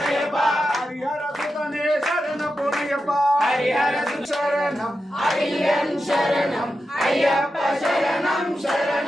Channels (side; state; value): both; normal; correlation 0.90